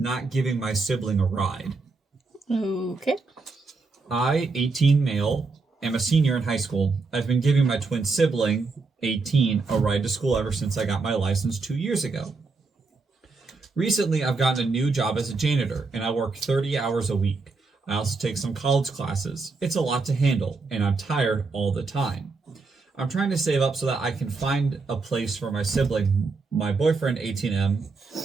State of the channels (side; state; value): left; quieter; 4.1 dB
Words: giving my sibling a ride? Okay. I, 18 male, am a senior in high school. I've been giving my twin sibling, 18, a ride to school ever since I got my license 2 years ago. Recently, I've gotten a new job as a janitor, and I work 30 hours a week. I also take some college classes. It's a lot to handle, and I'm tired all the time. I'm trying to save up so that I can find a place for my sibling, my boyfriend, 18M.